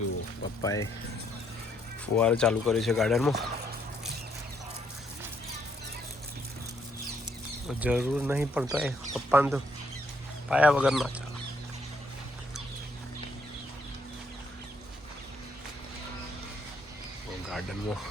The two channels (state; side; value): normal; both; correlation 0.71